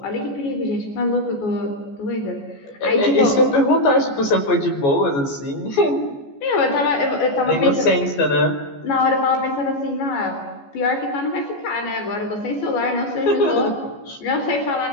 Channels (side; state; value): right; late; 14 ms